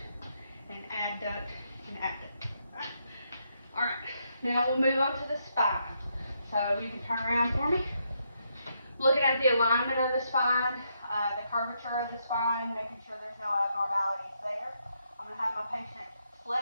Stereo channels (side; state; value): both; inverted; correlation -0.78